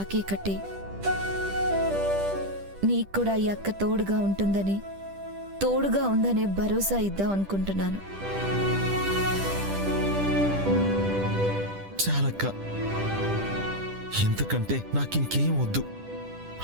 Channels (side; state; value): left; late; 10 ms